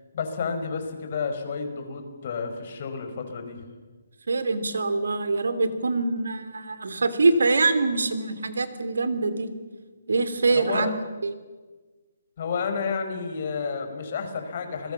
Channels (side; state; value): both; inverted; correlation -0.83